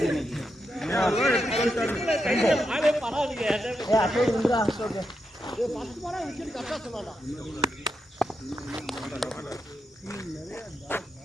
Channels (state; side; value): normal; both; correlation 0.85